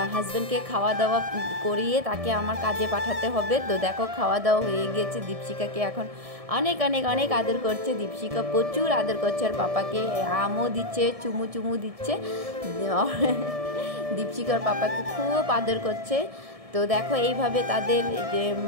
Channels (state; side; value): late; left; 1.7 ms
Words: হাজব্যান্ডকে খাওয়া দাওয়া করিয়ে তাকে আমার কাজে পাঠাতে হবে। তো দেখো খাওয়া দাওয়া হয়ে গিয়েছে। দীপশিকাকে এখন অনেক অনেক অনেক আদর করছে। দীপশিকা প্রচুর আদর করছে আর পাপাকে আমও দিচ্ছে, চুমু দিচ্ছে। দীপশিকার পাপাকে খুব আদর করছে। তো দেখো এইভাবে তাদের